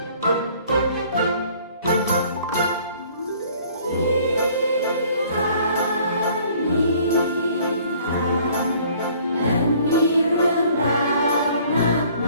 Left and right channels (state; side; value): inverted; both; correlation -0.56